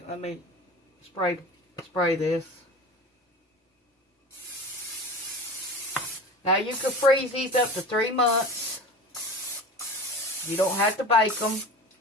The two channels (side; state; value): both; normal; correlation 0.34